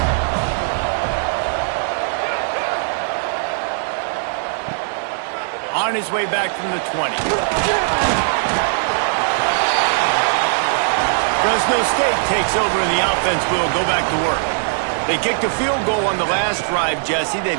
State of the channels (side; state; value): left; silent; 66 dB below the other